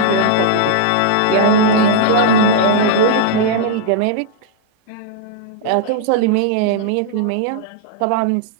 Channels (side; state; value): both; different; correlation -0.01